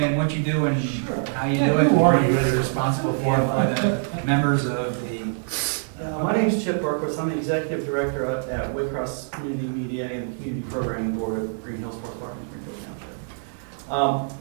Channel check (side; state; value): left; silent; digital silence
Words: what you do and how you Yeah, do it? who are you? What you're responsible for by the members of the. My name's Chip Berquist. I'm the executive director at Waycross Community Media and the Community Programming Board of Greenhills Sports Park in Greenville Township.